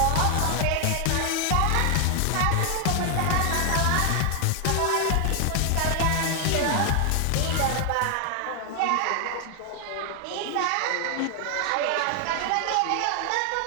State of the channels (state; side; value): different; both; correlation 0.00